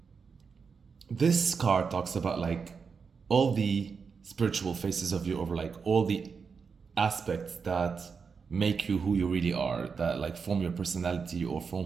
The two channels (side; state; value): left; quieter; 5.6 dB